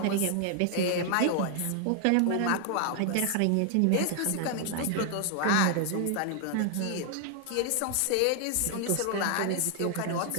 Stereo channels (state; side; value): different; both; correlation 0.00